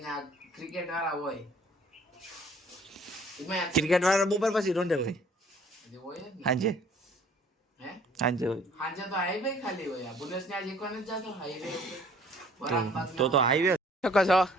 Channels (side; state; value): both; normal; correlation 0.56